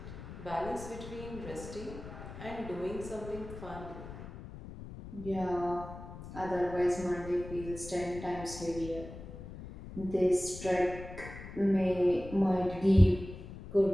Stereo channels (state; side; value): noise; left; rumble, 12 dB below the sound